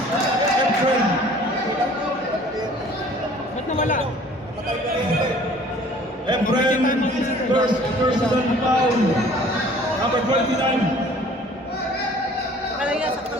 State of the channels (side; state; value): both; normal; correlation 0.51